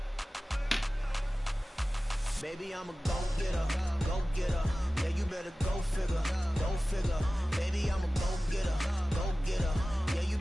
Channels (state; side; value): normal; both; correlation 0.96